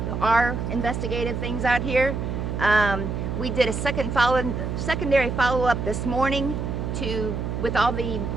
our investigative things out here. We did a secondary follow-up this morning with all the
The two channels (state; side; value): noise; right; hum, 3 dB below the sound